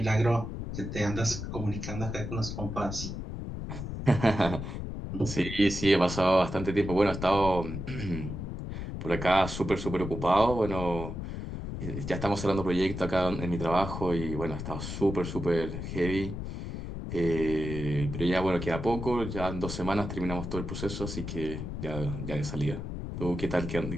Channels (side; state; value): left; noise; rumble, 6 dB below the sound